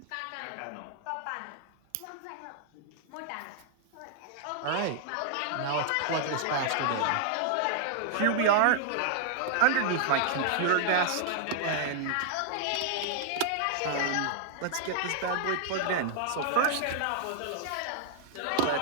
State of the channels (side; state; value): both; different; correlation -0.01